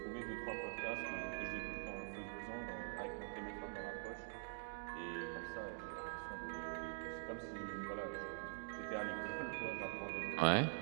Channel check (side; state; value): left; silent; digital silence